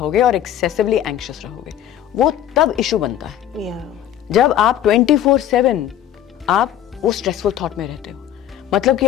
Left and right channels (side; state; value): right; quieter; 11.1 dB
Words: और एक्सेसिवली एंग्शियस रहोगे, वो तब इशू बनता है। जब आप 24/7 आप वो स्ट्रेसफुल थॉट में रहते हो, मतलब कि